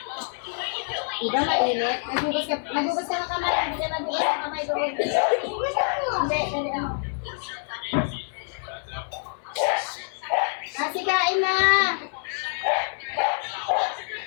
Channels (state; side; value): silent; right; digital silence